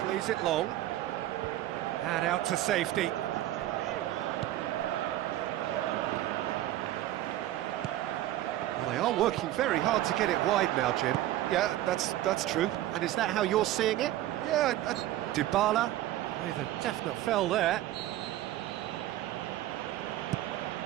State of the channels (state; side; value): quieter; left; 14.3 dB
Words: plays it long and out to safety. Well, they are working very hard to get it wide now, Jim. Yeah, that's true. And is that how you're seeing it? Yeah, Dybala with a definite foul there.